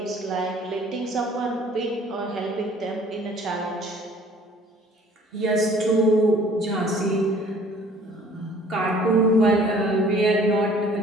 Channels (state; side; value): normal; both; correlation 0.54